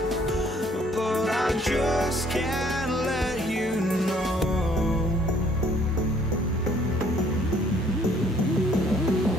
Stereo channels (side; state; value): both; normal; correlation 0.61